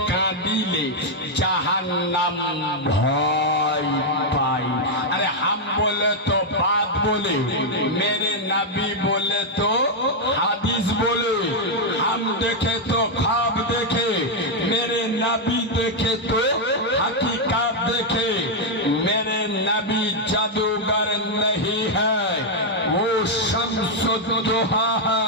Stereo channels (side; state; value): both; normal; correlation -0.01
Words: কাঁদিলে জাহান্নাম ভয় পায়। अरे हम बोले तो बात बोले, मेरे नबी बोले तो हदीस बोले, हम देखे तो ख्वाब देखे, मेरे नबी देखे तो हकीकत देखे, मेरे नबी जादूगर नहीं है, वो शम्सुद्दोहा